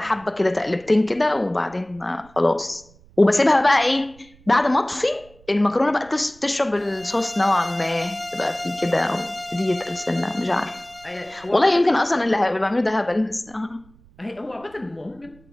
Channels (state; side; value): noise; right; rumble, 27 dB below the sound